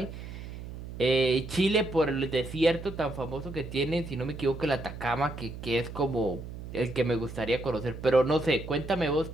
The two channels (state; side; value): noise; right; hum, 10 dB below the sound